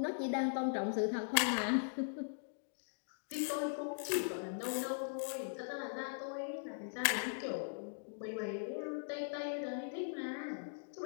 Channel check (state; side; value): silent; right; digital silence